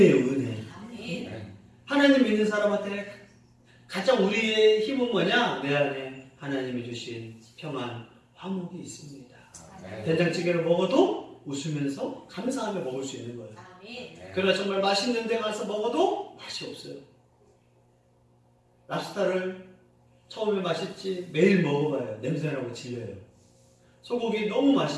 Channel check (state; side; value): identical; both; correlation 1.00